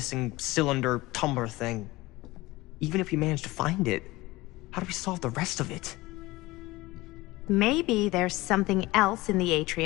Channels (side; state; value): right; quieter; 20.0 dB